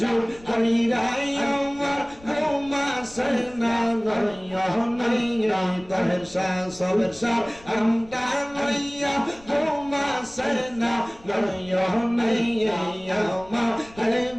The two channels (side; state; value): left; noise; rumble, 23 dB below the sound